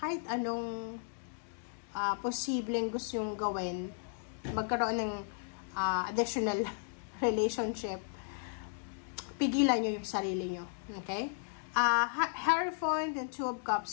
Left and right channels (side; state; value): right; silent; digital silence